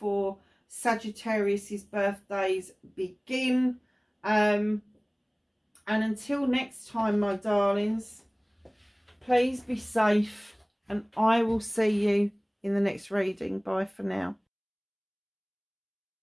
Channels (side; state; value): both; identical; correlation 1.00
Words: Sagittarius's birthdays begin. And until next time, my darlings, please be safe and I will see you in the next reading. Bye for now.